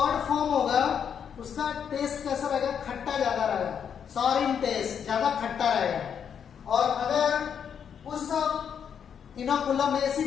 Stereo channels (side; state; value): right; quieter; 7.8 dB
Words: फॉर्म होगा उसका टेस्ट कैसा रहेगा खट्टा ज्यादा रहेगा सॉर इन टेस्ट ज्यादा खट्टा रहेगा। और अगर उस इनोकुलम में